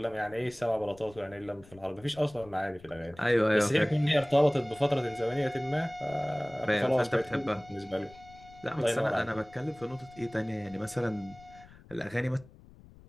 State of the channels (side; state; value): left; noise; rumble, 22 dB below the sound